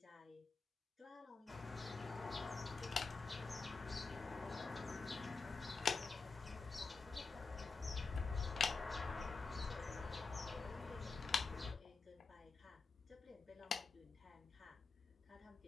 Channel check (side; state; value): right; quieter; 4.3 dB